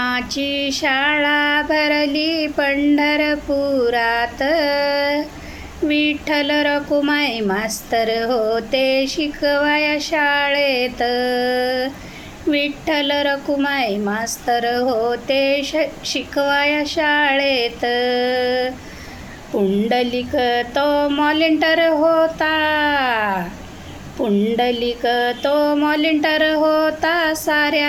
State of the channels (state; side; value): identical; both; correlation 1.00